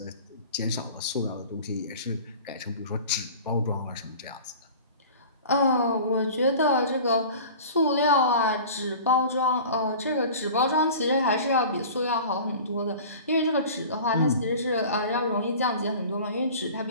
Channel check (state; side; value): inverted; both; correlation -0.40